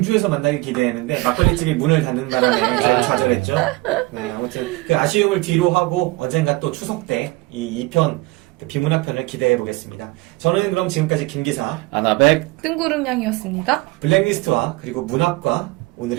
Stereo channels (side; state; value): left; quieter; 22.1 dB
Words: 만나길 기대했는데 막걸리집이 문을 닫는 바람에 저희가 좌절했죠. 네, 아무튼 그 아쉬움을 뒤로 하고 언젠가 또 추석 때 이 2편 비문학편을 기대해 보겠습니다. 저는 그럼 지금까지 김기사, 아나백 뜬구름 양이었습니다. 블랙리스트와 그리고 문학과